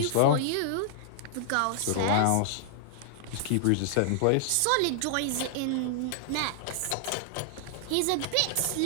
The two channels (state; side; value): different; both; correlation -0.01